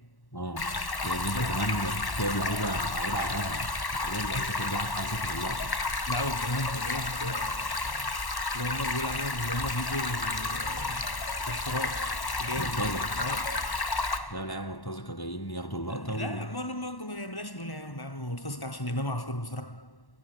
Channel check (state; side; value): late; right; 1.1 ms